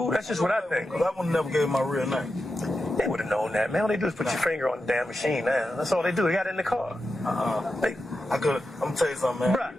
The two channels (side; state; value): both; normal; correlation 0.89